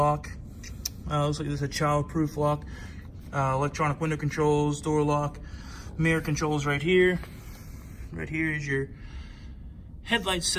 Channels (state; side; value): identical; both; correlation 1.00